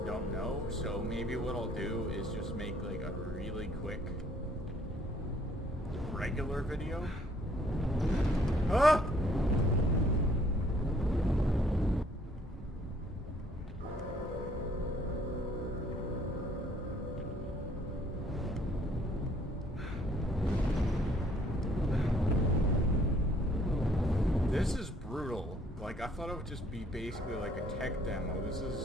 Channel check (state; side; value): normal; both; correlation 0.63